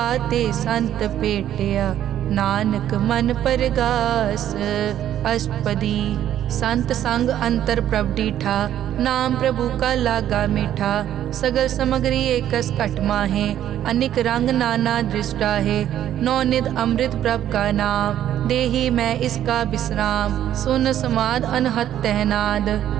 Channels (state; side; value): quieter; left; 11.3 dB